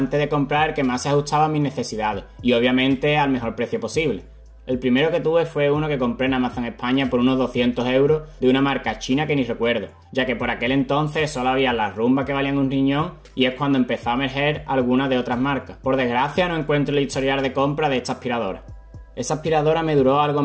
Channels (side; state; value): both; identical; correlation 1.00